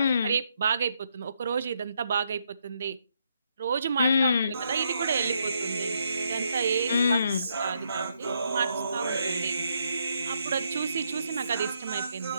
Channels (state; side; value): inverted; both; correlation -0.77